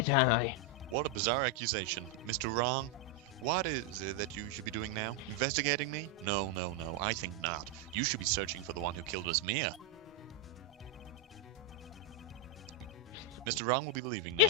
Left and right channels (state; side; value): normal; both; correlation 0.02